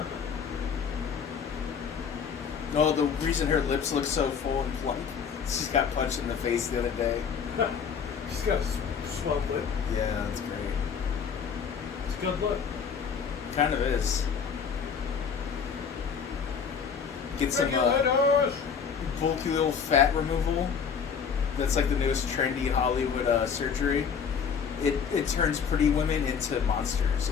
No, the reason her lips look so full and plump, she's got punched in the face the other day. She's got a swelled lip. Yeah, that's great. It's a good look. Kind of is. Get some Regulators! bulky little fat removal. That's like the newest trendy Hollywood surgery. It turns pretty women into monsters.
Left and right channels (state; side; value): quieter; right; 6.7 dB